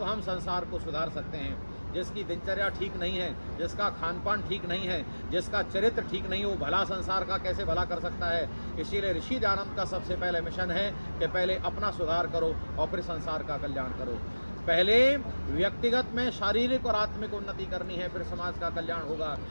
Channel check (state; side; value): inverted; both; correlation -1.00